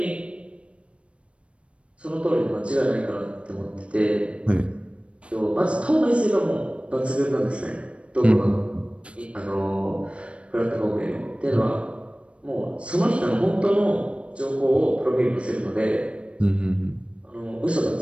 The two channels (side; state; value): left; late; 0.060 ms